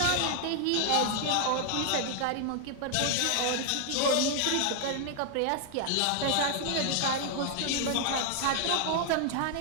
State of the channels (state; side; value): different; both; correlation 0.00